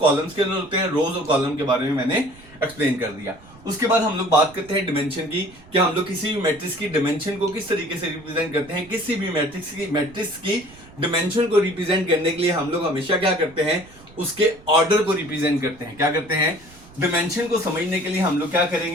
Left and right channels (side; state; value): right; noise; rumble, 23 dB below the sound